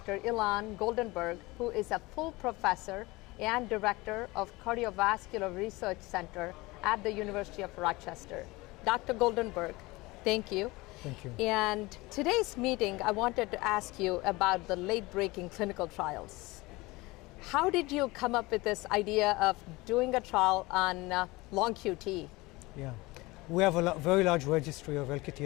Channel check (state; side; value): quieter; right; 22.1 dB